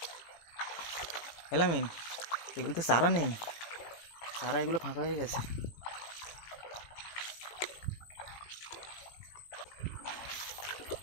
এলামিন এগুলো তো চারা নেই, চারা এগুলো ফাঁকা হয়ে গেছে।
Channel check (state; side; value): late; right; 18 ms